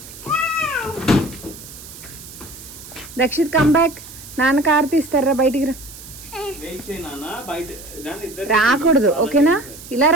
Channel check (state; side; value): noise; right; hiss, 16 dB below the sound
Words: దక్షిత్ కమ్ బ్యాక్. నాన్న కార్ తీస్తారా బయటికి రా. రాకూడదు ఓకేనా. ఇలా